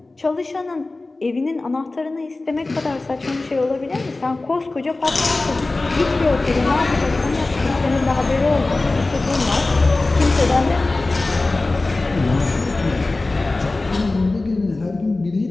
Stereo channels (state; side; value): quieter; right; 3.2 dB